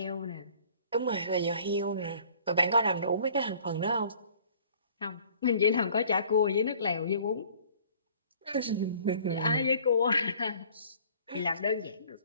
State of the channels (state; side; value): inverted; both; correlation -0.53